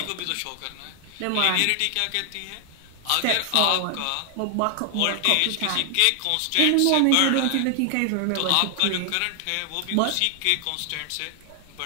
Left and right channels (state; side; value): different; both; correlation 0.00